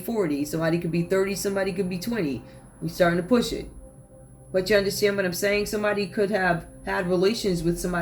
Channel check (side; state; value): both; identical; correlation 1.00